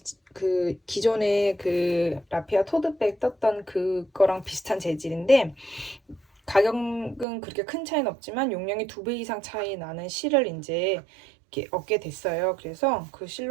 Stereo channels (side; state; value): left; drops out; at 7.2 s